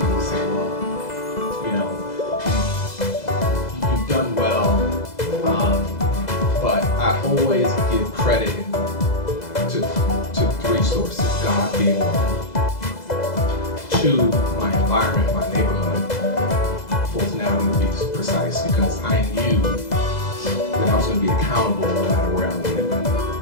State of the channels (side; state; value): right; late; 2.0 ms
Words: will say, well, you've done well, but I always give credit to 3 sources, God being one. 2, my environment, my neighborhood, Fulton Avenue to be precise, because I knew that I was going to be accountable no matter where I lived.